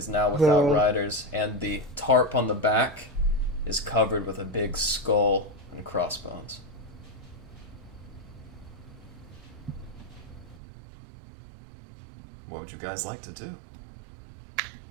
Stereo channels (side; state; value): left; drops out; at 10.6 s